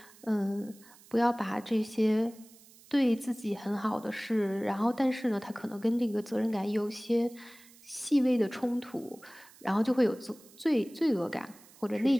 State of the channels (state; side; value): noise; right; hiss, 24 dB below the sound